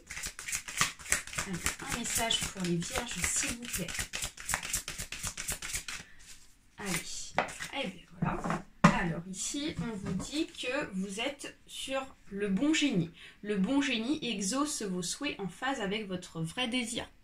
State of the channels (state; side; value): identical; both; correlation 1.00